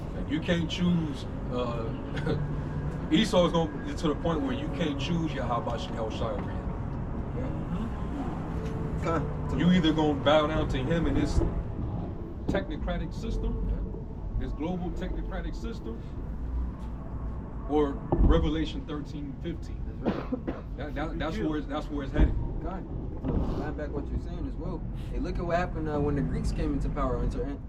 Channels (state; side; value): identical; both; correlation 1.00